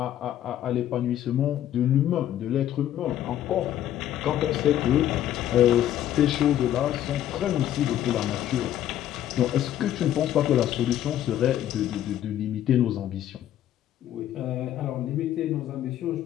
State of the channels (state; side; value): quieter; right; 11.8 dB